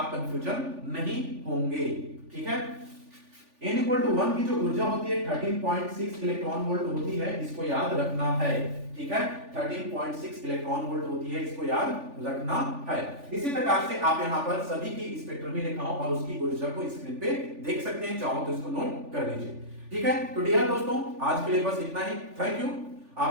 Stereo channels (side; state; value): left; late; 3.4 ms